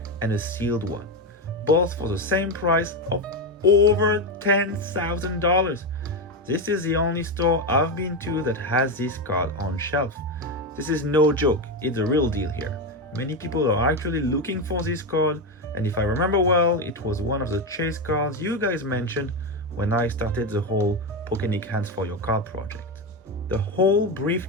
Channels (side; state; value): both; normal; correlation 0.12